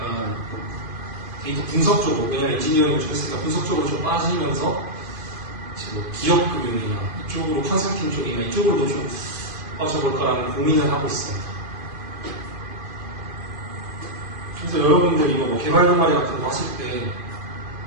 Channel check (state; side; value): late; left; 2.5 ms